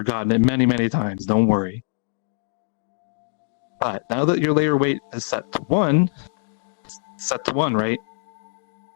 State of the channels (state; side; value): silent; right; digital silence